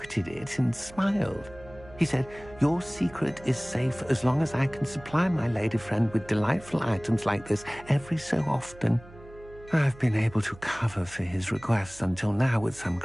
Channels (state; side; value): noise; right; hum, 20 dB below the sound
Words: it, and smiled. He said, "Your secret is safe as long as I can supply my lady friend with delightful items like this every so often." I've been able to cover for his requests until now with some